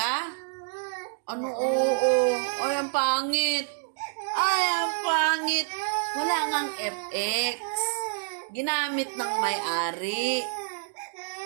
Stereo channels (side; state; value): left; silent; digital silence